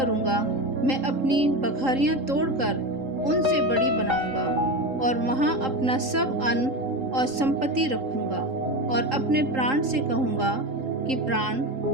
मैं अपनी बखरियाँ तोड़कर उनसे बड़ी बनाऊंगा और वहाँ अपना सब अन्न और संपत्ति रखूंगा, और अपने प्राण से कहूँगा कि प्राण,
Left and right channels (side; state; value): left; late; 3.8 ms